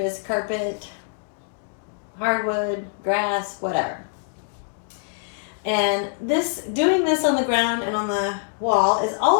carpet, hardwood, grass, whatever. And doing this on the ground and on the wall is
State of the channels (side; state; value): right; silent; digital silence